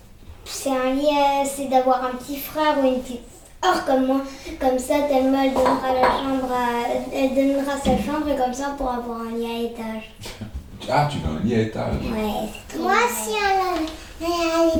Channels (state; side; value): identical; both; correlation 1.00